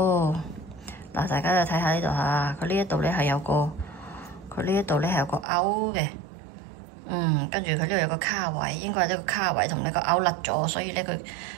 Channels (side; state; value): left; drops out; at 5.5 s